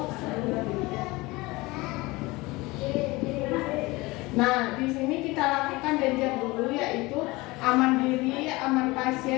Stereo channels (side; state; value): right; quieter; 22.2 dB